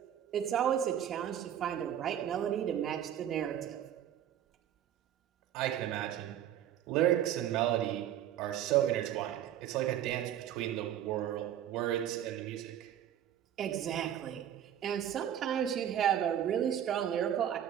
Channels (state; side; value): quieter; left; 10.6 dB